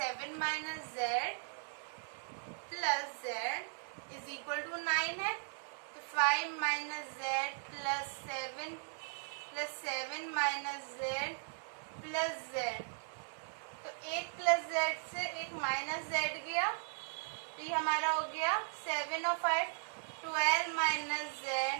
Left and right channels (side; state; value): left; silent; 52 dB below the other